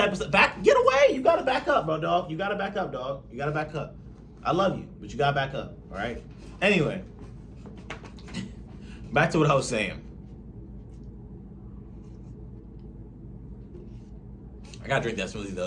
of stuff. Get away. You got to back up, bro, dog. You got to back up, dog. You got to back up. I love you, but you got to back up, all right? Anyway, back to what I was saying. I got to drink that smoothie,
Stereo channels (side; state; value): both; identical; correlation 1.00